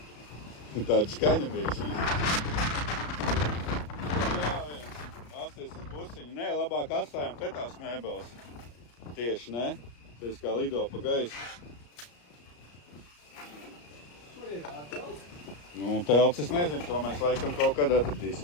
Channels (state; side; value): late; right; 34 ms